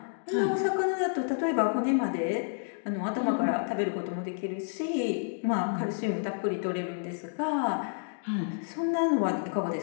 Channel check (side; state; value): right; silent; digital silence